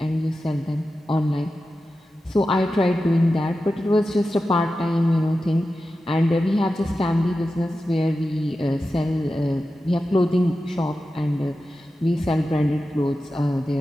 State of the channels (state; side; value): normal; both; correlation 0.92